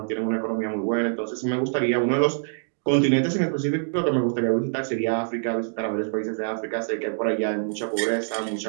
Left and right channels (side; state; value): left; silent; digital silence